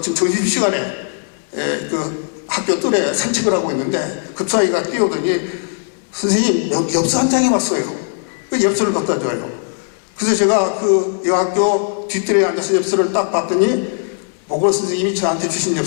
점심시간에 그 학교 뜰에 산책을 하고 있는데 급사이가 뛰어오더니 선생님 엽서 한 장이 왔어요. 그 엽서를 갖다 줘요. 그래서 제가 그 여학교 뒷뜰에 앉아서 엽서를 딱 봤더니 보고 선생님이 저한테 주신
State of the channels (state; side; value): silent; right; 67 dB below the other